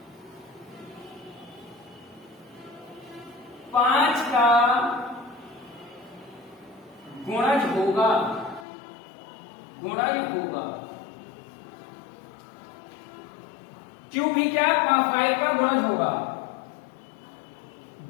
5 का गुणज होगा, गुणज होगा। q भी क्या 5 का गुणज होगा।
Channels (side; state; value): right; drops out; at 8.7 s